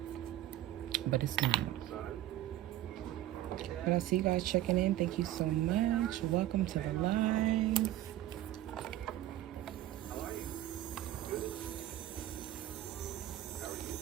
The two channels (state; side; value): quieter; left; 13.7 dB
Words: But it's not. But I see you guys checking in. Thank you so much. Welcome to the live.